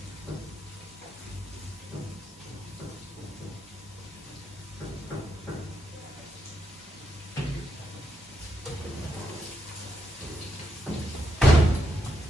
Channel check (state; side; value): normal; both; correlation 0.81